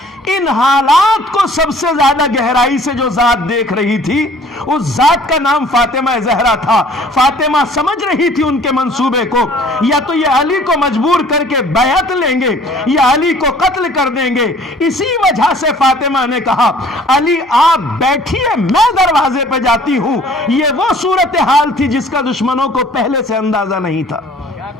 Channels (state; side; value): normal; both; correlation 0.53